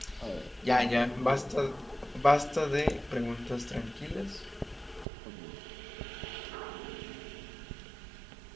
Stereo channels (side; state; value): left; drops out; at 5.1 s